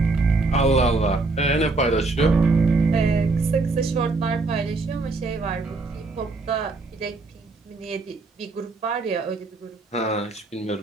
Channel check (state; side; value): quieter; left; 3.5 dB